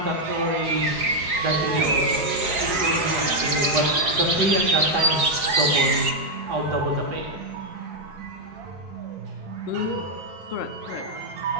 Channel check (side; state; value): left; late; 4.9 ms